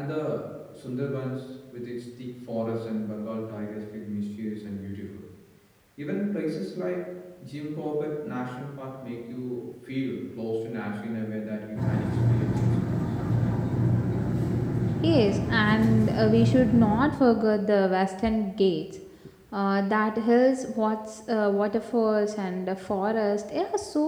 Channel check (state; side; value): identical; both; correlation 1.00